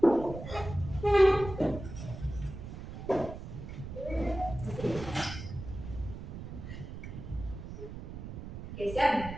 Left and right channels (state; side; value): noise; right; rumble, 10 dB below the sound